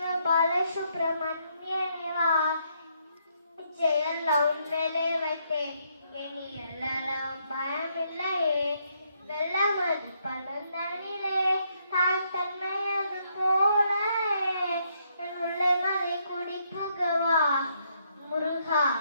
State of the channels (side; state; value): both; inverted; correlation -0.74